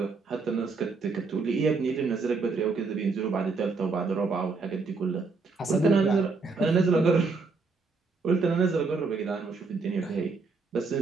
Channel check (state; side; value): quieter; left; 4.3 dB